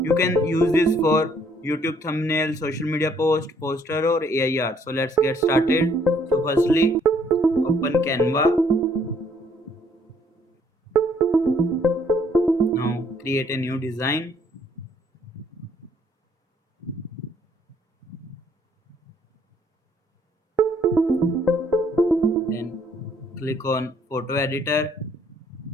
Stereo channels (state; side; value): normal; both; correlation 0.65